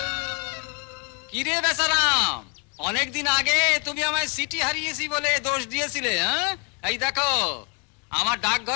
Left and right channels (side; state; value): right; quieter; 35.9 dB